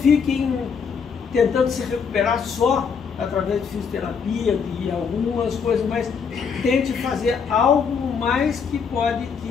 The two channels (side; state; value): right; quieter; 6.2 dB